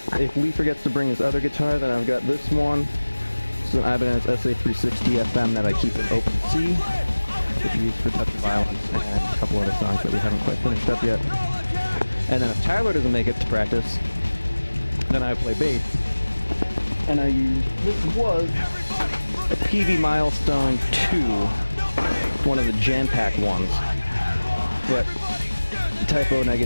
if Lee forgets to bring his other guitar, then I've got this one. It's an Ibanez SA360 FM that I keep in open C, which we use for Touch of Violence and a couple other songs that we haven't quite finished up yet. And then if Tyler doesn't make it to practice, then I play bass. And I use, this was a PV Milestone 2, one of the jam pack ones. But Typo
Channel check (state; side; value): inverted; both; correlation -1.00